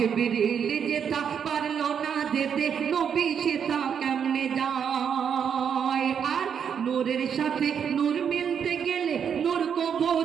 যেটা পারলো না যেতে নবী সেটা কেমনে যায়। আর নূরের সাথে নূর মিলতে গেলে নূর কবু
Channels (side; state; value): left; quieter; 7.6 dB